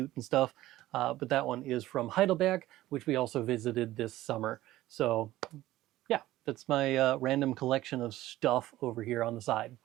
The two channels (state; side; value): quieter; left; 15.7 dB